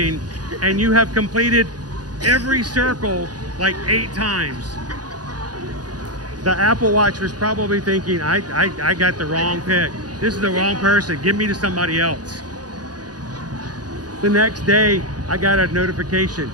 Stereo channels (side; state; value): left; late; 0.69 ms